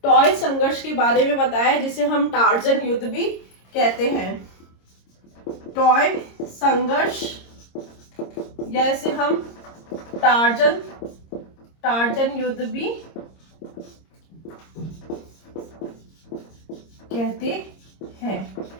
टॉय संघर्ष के बारे में बताया है, जिसे हम टार्जन युद्ध भी कहते हैं। टॉय संघर्ष, या इसे हम टार्जन युद्ध भी कहते हैं।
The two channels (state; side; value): late; right; 26 ms